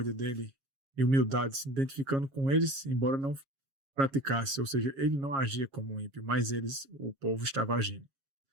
dele e humildade, se identificando com eles, embora não praticasse, ou seja, ele não agia como ímpio, mas o povo estava agindo.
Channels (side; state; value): left; late; 7.3 ms